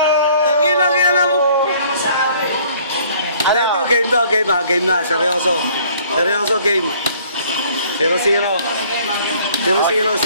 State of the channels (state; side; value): inverted; both; correlation -0.57